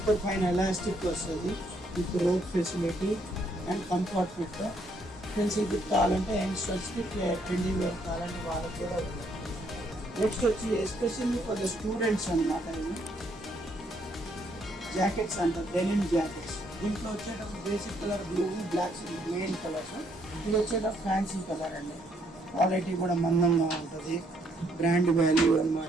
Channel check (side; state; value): both; normal; correlation 0.71